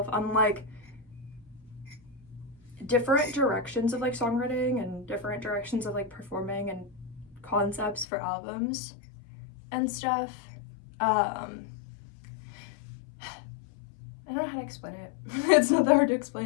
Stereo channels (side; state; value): right; drops out; at 8.1 s